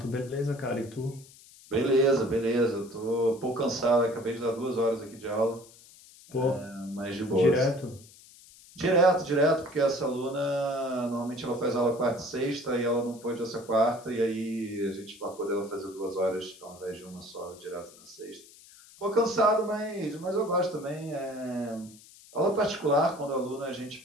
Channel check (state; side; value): noise; left; hiss, 22 dB below the sound